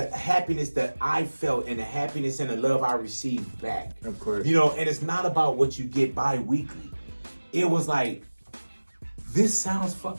happiness that I felt and the happiness and the love I received back. Of course. You know, and it's not about what you get bi-weekly. It was like, this sounds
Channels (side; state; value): both; inverted; correlation -1.00